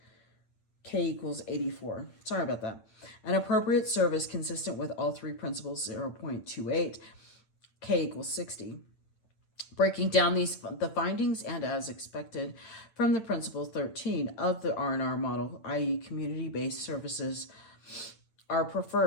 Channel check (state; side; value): late; right; 8.9 ms